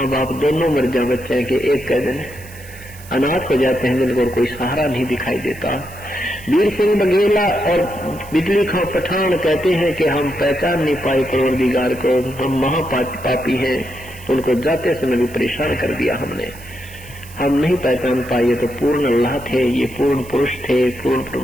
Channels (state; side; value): noise; right; hiss, 20 dB below the sound